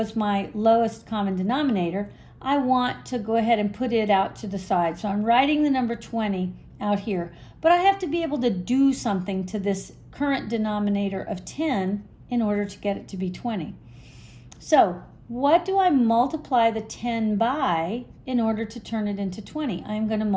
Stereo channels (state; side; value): identical; both; correlation 1.00